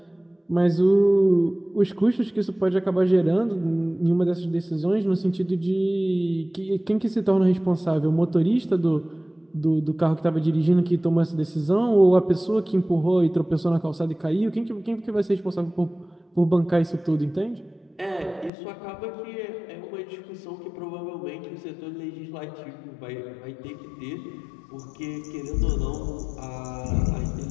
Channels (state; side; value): drops out; right; at 18.5 s